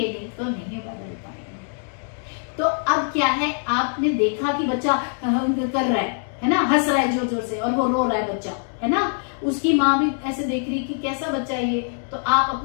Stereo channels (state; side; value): silent; right; 61 dB below the other